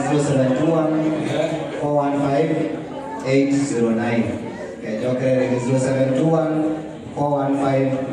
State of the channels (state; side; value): identical; both; correlation 1.00